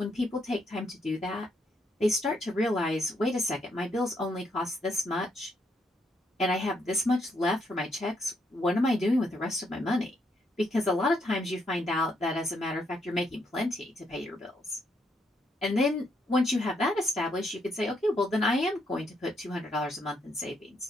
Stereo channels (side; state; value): both; normal; correlation 0.75